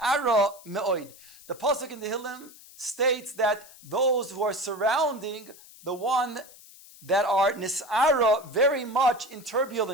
me'oid. The pasuk in the Hillim states that those who are surrounding the one that are nis'ara very much in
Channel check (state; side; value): noise; left; hiss, 21 dB below the sound